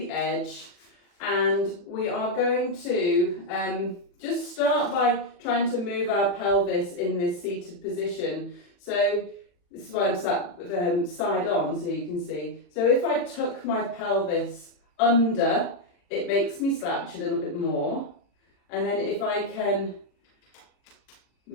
edge, and we are going to just start by trying to move our pelvis in this seated position. So this is why I'm sat side on, so you can see. So if I tuck my pelvis under, it makes me slouch a little bit more. And then if I can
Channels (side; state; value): right; late; 40 ms